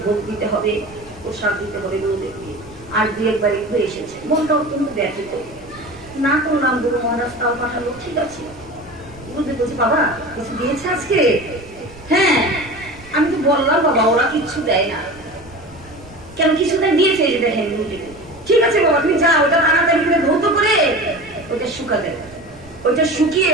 ভোগ দিতে হবে, প্রসাদ দিতে হবে গুরুদেবকে, আর 2 বাড়ি ঘুরে এসেছে। মনটা অত্যন্ত ব্যথিত, না করলাম, গুরু মহারাজ তাও পাঠালো, ঠিক আছে। গুরুদেব বলছে বাবা কিছু দিয়েছে আজকে? হ্যাঁ, আমি তো বললাম বাবা ওরা কিচ্ছু দেয় না। কেন কিছু দেয়? দিয়েছে, যে দেখেন গুরুদেব। ঠিক আছে বাবা তুমি যাও, ওটা তাড়াতাড়ি করে ধৌত করে ওটা শুকাতে, ওইটা শুকিয়ে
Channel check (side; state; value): right; noise; rumble, 22 dB below the sound